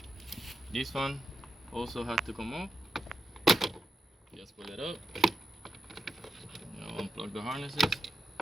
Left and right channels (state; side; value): normal; both; correlation 0.87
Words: this one also has to come off. Just pull it up. Now unplug the harnesses.